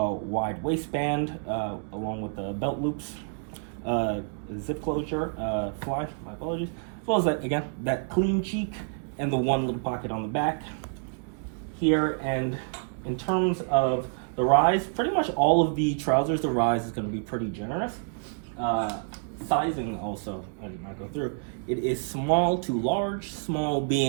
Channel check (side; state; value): left; silent; 59 dB below the other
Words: waistband along with the belt loops, zip closure, fly, my apologies, as well as that clean cheek and the one little pocket on the back here. And in terms of the rise, pretty much all of the trousers, the rise is going to be pretty generous. Sizing also, as you might go through, it is small to large, small